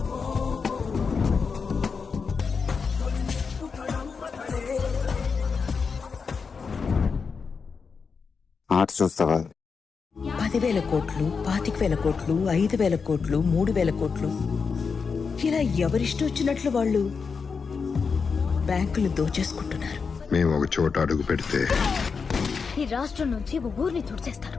ఆట చూస్తావా? 10,000 కోట్లు, 25,000 కోట్లు, 5,000 కోట్లు, 3,000 కోట్లు, ఇలా ఎవరిష్టం వచ్చినట్లు వాళ్ళు బ్యాంకులు దోచేసుకుంటున్నారు. మేము ఒక చోట అడుగు పెడితే ఈ రాష్ట్రం నుంచి ఒక ఊరిని తుడిచేస్తారు.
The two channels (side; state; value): right; quieter; 5.4 dB